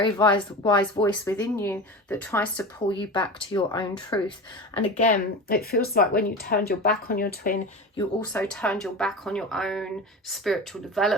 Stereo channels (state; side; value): normal; both; correlation 0.29